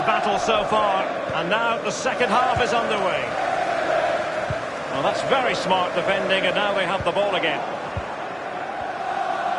so far, and now the second half is underway. Well, that's very smart defending, and now they have the ball again.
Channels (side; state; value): both; identical; correlation 1.00